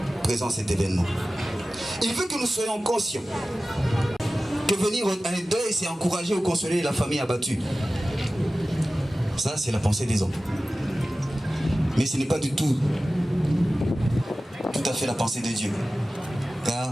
présent cet événement. Il veut que nous soyons conscients que venir à un deuil, c'est encourager ou consoler la famille abattue. Ça, c'est la pensée des hommes. Mais ce n'est pas du tout à fait la pensée de Dieu. Car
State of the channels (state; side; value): normal; both; correlation 0.96